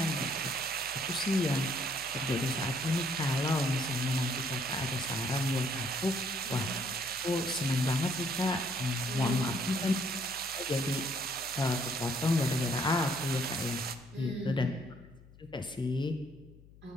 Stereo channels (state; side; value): noise; left; hum, 22 dB below the sound